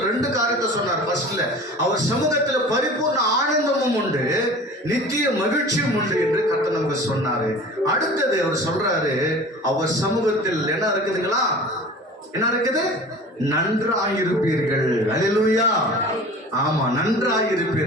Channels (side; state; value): both; normal; correlation 0.40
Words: 2 காரியத்தை சொன்னார். ஃபர்ஸ்ட்ல அவர் சமூகத்துல பரிபூர்ண ஆனந்தமும் உண்டு, நித்திய மகிழ்ச்சியும் உண்டு என்று கர்த்தர் நமக்கு சொன்னாரு. அடுத்தது அவர் சொல்றாரு, அவர் சமூகத்தில் என்ன இருக்குதுங்களா, என்ன இருக்குது, நன்றாயிருப்பீர்கள். அல்லேலூயா. ஆமா,